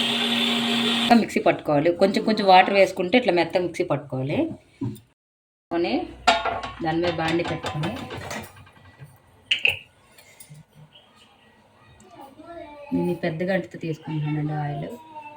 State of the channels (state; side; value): identical; both; correlation 1.00